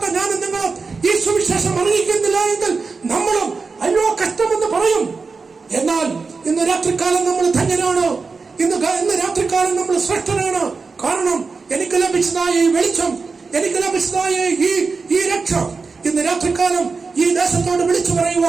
ഞാനും നിങ്ങളും ഈ സുവിശേഷം അറിയിക്കുന്നില്ല എങ്കിൽ നമ്മളും അയ്യോ കഷ്ടമെന്ന് പറയും. എന്നാൽ ഇന്ന് രാത്രികാലം നമ്മൾ ധന്യനാണ്. ഇന്ന് രാത്രികാലം നമ്മൾ ശ്രേഷ്ഠനാണ്. കാരണം എനിക്ക് ലഭിച്ചതായ ഈ വെളിച്ചം, എനിക്ക് ലഭിച്ചതായ ഈ രക്ഷ ഇന്ന് രാത്രികാലം ഈ ദേശത്തോട് വിളിച്ചു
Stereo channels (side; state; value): left; quieter; 4.5 dB